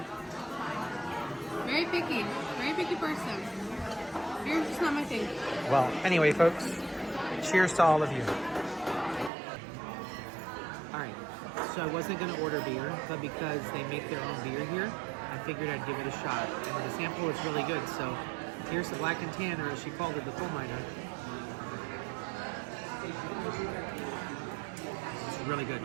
Very picky person. Beer's just not my thing. Well, anyway, folks, cheers to all of you. All right, so I wasn't going to order beer, but because they make their own beer here, I figured I'd give it a shot. And the sample is really good, so here's the Black and Tan, or as she called it, the coal miner. It's really good.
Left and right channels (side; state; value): left; drops out; at 9.3 s